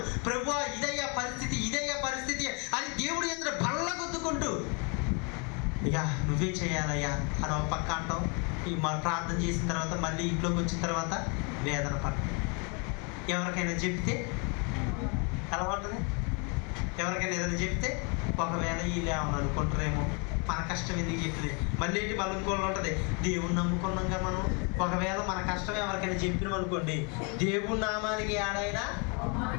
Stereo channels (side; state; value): right; quieter; 34.2 dB